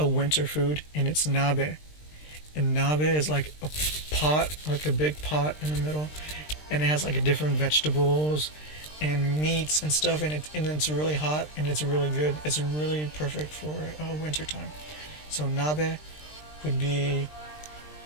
winter food, and it's nabe. And nabe is like a pot, like a big pot in the middle, and it has like different vegetables and meats and stuff, and it's really hot and it's really good. It's really perfect for winter time. So nabe would be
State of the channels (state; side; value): late; right; 20 ms